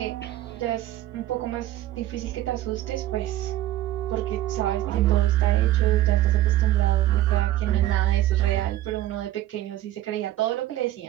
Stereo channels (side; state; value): left; quieter; 14.1 dB